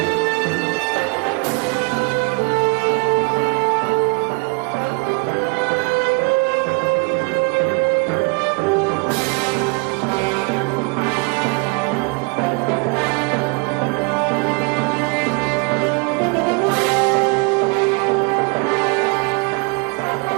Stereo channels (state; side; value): quieter; left; 31.0 dB